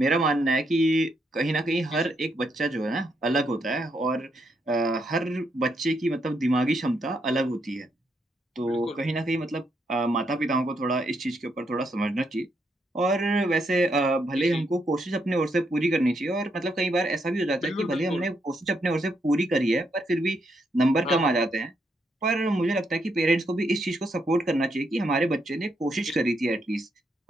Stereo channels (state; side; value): normal; both; correlation 0.78